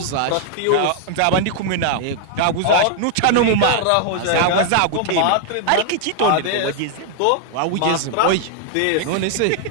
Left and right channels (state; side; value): different; both; correlation 0.00